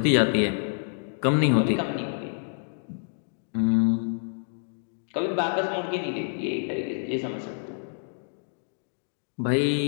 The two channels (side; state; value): right; silent; digital silence